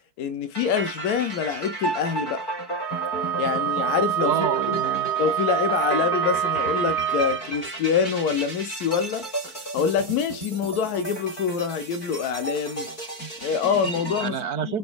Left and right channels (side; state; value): right; late; 4.5 ms